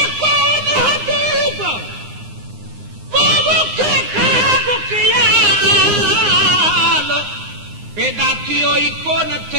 पैदा थियो ई कोन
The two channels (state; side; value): late; left; 9.7 ms